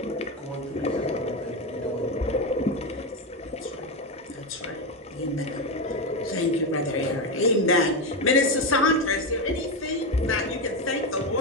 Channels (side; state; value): both; normal; correlation 0.12